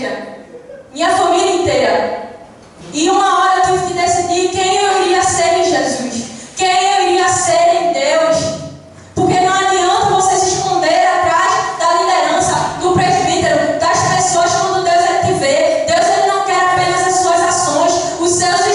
minha família inteira. E uma hora eu tive que decidir quem eu iria ser em Jesus, quem eu iria ser em Deus. Porque não adianta você se esconder atrás da liderança, do presbítero, das pessoas quando Deus ele te vê. Deus ele não quer apenas as suas ações, os seus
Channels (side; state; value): both; identical; correlation 1.00